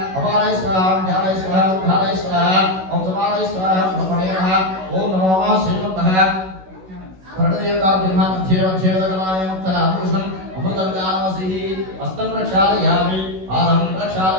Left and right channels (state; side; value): late; left; 16 ms